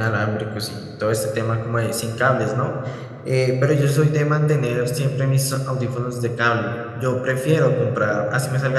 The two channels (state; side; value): identical; both; correlation 1.00